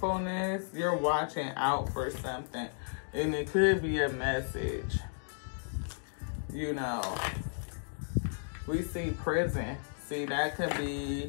You're watching out for something. And it could be a message. You know. We see prison. See, that could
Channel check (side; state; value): right; silent; digital silence